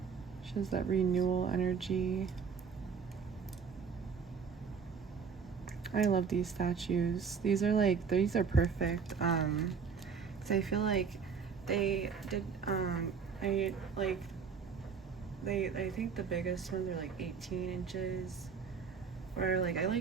She has that renewal energy. I love these statues. These are perfect. 'Cause I feel like they did, I think the biggest ones are like 18 inches. Or like, I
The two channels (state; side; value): quieter; left; 6.1 dB